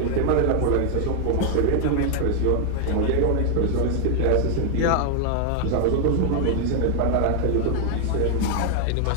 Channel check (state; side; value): different; both; correlation 0.00